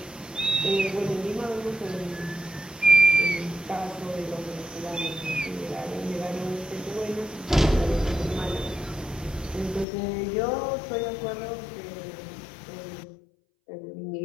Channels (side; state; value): right; drops out; at 9.9 s